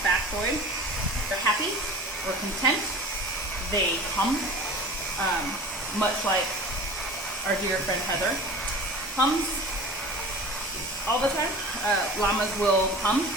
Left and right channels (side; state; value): both; normal; correlation 0.38